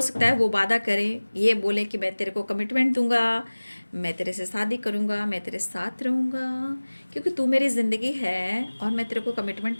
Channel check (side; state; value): both; inverted; correlation -1.00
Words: सकता है वो वादा करें, ये बोले कि मैं तेरे को कमिटमेंट दूंगा, मैं तेरे से शादी करूंगा, मैं तेरे साथ रहूंगा, क्योंकि तू मेरी ज़िंदगी है और मैं तेरे को कमिटमेंट